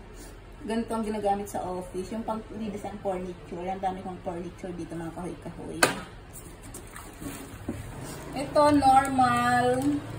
ganito ang ginagamit sa office. Yung pang redesign furniture. Yan, dami kong furniture dito, mga kahoy-kahoy. Ito, Normal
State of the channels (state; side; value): identical; both; correlation 1.00